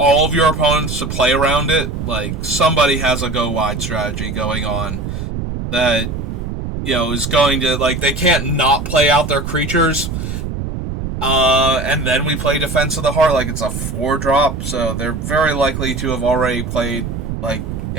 of your opponents to play around it. Like, somebody has a go wide strategy going on that, is going to, like, they can't not play out their creatures. And then we play Defense of the Heart, like it's a 4-drop, so they're very likely to have already played, like,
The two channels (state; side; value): noise; right; rumble, 5 dB below the sound